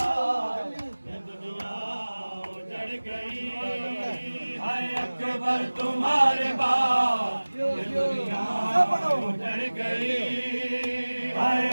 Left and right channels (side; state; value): both; inverted; correlation -1.00